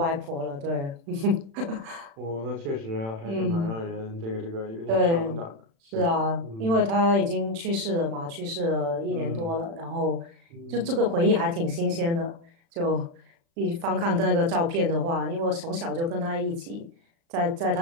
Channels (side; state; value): left; late; 36 ms